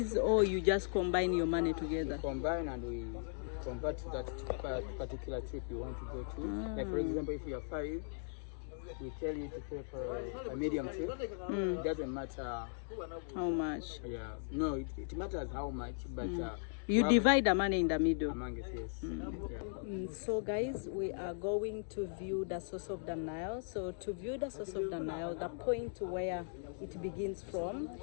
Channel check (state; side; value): silent; right; digital silence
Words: or you just combine your money together? We combine and we convert to that particular trip you want to go to. Like for example, if you are 5, we tell you to pay for a medium trip. It doesn't matter how much. Yeah, no, it matters how much, but you divide the money in the middle. Among us, yes. Yeah. So guys, we are going to view the source of the Nile. So to view the source of the Nile, the point where it begins from,